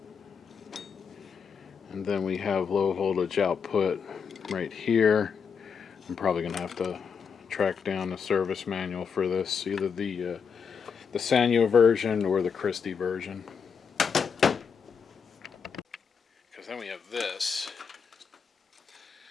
and then we have low voltage output right here. I'm probably gonna have to track down the service manual for this, either the Sanyo version or the Christie version. Because then we have this.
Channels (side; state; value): right; quieter; 6.3 dB